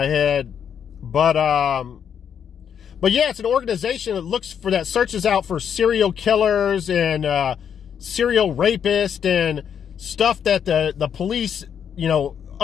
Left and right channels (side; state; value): right; quieter; 8.1 dB